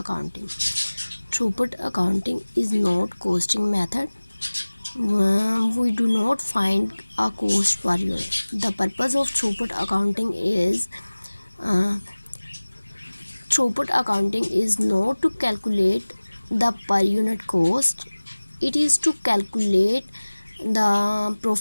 Throughput accounting is not costing method. We do not find a cost per unit. The purpose of throughput accounting is not to calculate the per unit cost. It is to calculate the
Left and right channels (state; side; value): inverted; both; correlation -1.00